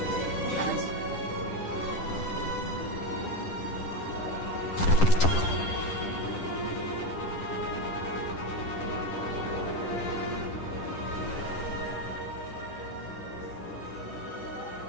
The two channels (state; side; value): late; right; 10 ms